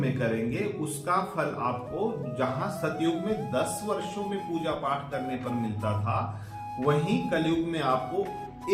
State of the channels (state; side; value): identical; both; correlation 1.00